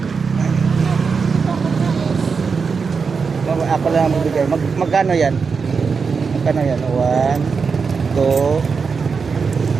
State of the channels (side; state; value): left; quieter; 5.3 dB